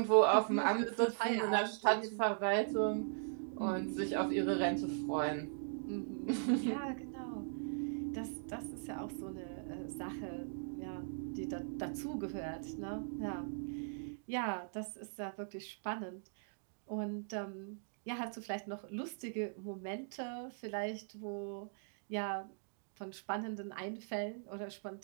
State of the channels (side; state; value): left; silent; digital silence